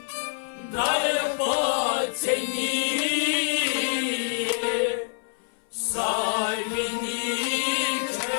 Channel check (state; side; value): silent; right; 61 dB below the other